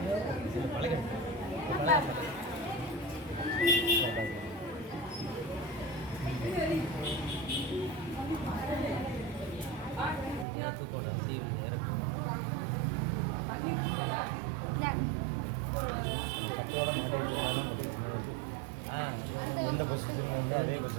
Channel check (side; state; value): left; drops out; at 10.5 s